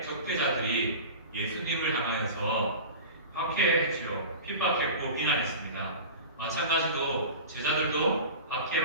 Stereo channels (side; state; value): both; inverted; correlation -0.34